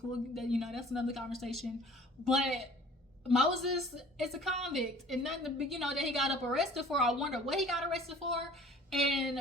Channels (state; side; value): normal; both; correlation 0.49